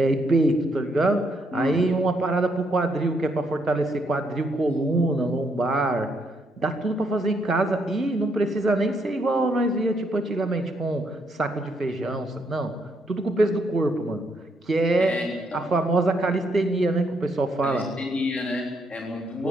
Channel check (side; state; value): both; normal; correlation 0.75